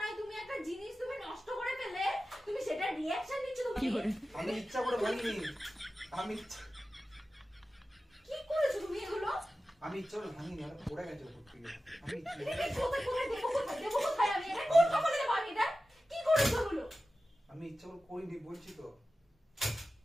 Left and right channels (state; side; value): normal; both; correlation 0.94